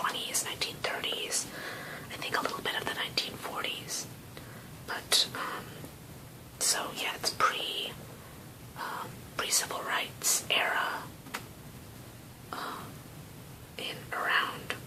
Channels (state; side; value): identical; both; correlation 1.00